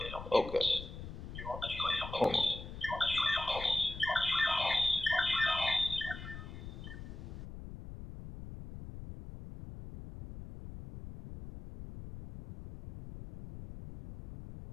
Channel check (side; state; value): left; noise; rumble, 11 dB below the sound